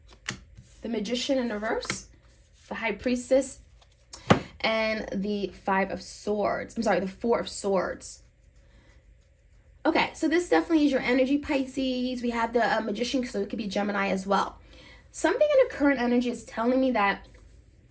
The Magician in reverse, the High Priestess, and the Five of Swords. I'm sorry, the Four of Swords. Okay, so this definitely is your energy, Pisces. We have the Magician, so it could be Gemini as well. Something in the current energy is telling me that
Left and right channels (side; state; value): both; identical; correlation 1.00